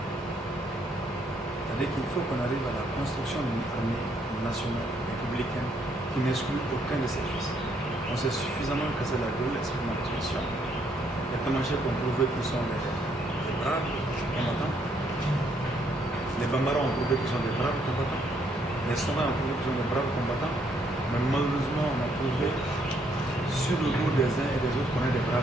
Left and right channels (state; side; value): normal; both; correlation 0.70